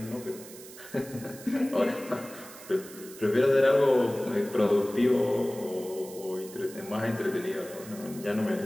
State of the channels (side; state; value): right; noise; hiss, 17 dB below the sound